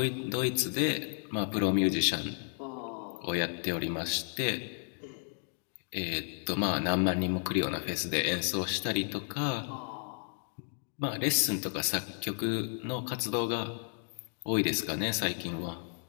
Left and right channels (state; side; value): silent; right; 56 dB below the other